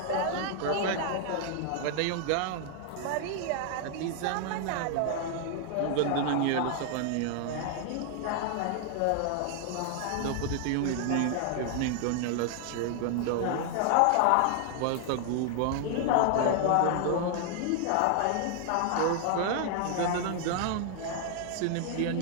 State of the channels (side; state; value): both; different; correlation 0.00